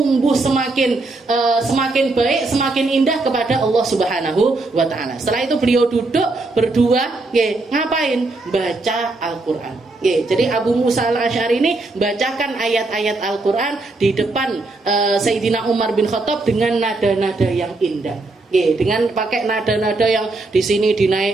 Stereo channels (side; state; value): left; quieter; 3.2 dB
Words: semakin baik, semakin indah kepada Allah Subhanahu wa Ta'ala. Setelah itu beliau duduk berdua, ngapain? Baca Al-Quran. Jadi Abu Musa al-Ash'ari ini bacakan ayat-ayat Al-Quran di depan Sayyidina Umar bin Khattab dengan nada-nada yang indah. Dengan pakai nada-nada yang di sini